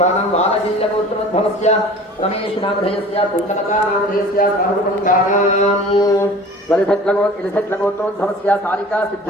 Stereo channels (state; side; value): normal; both; correlation 0.43